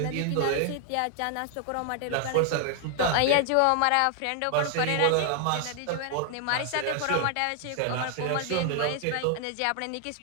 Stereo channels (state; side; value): different; both; correlation 0.00